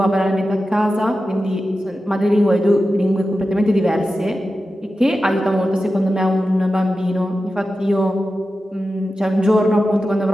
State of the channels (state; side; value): normal; both; correlation 0.92